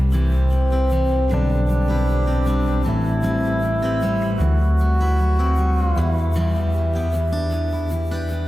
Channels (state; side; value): normal; both; correlation 0.94